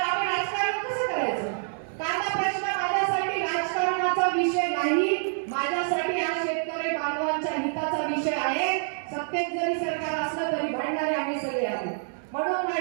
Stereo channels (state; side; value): silent; left; 60 dB below the other